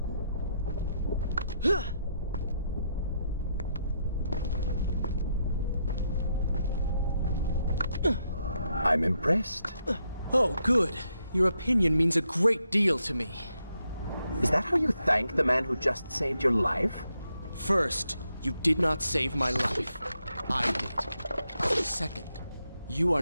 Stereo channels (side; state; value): both; inverted; correlation -0.79